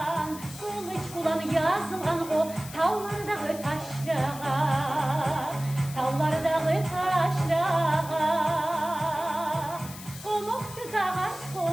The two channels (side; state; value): left; noise; hiss, 14 dB below the sound